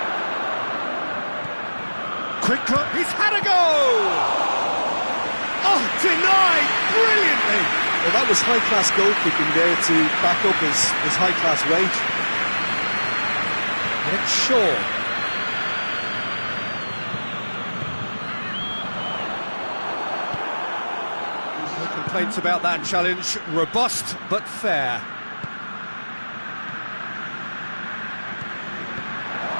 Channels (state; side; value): inverted; both; correlation -1.00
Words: Quick cut, he's had a go! Oh, denied brilliantly! Well, that was high-class goalkeeping there to back up his high-class wage. It's Shaw. No complaints about that challenge. Robust, but fair.